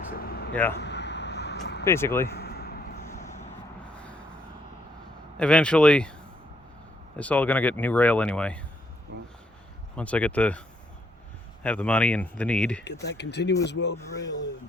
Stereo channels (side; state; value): both; normal; correlation 0.71